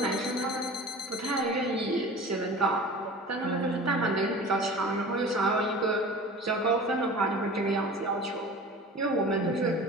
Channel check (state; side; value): normal; both; correlation 0.39